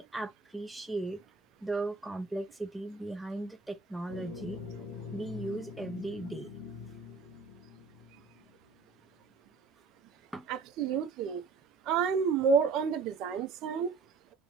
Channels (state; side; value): quieter; left; 4.5 dB